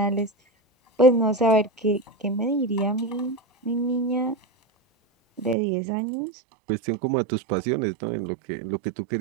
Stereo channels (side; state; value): left; drops out; at 5.6 s